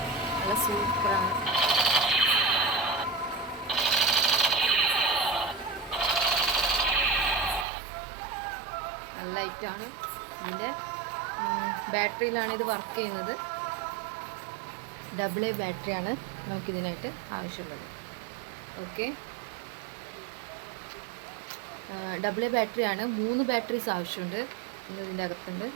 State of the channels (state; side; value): drops out; left; at 7.7 s